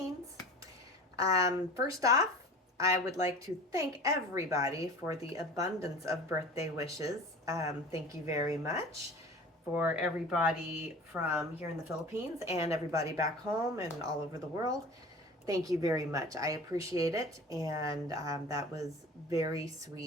First off, I would like to thank everybody for the abundance of birthday wishes. Thank you very much for everybody from here in the Philippines and everybody back home and all over the world. Thank you very much. I appreciate it, and that was very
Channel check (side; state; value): both; normal; correlation 0.39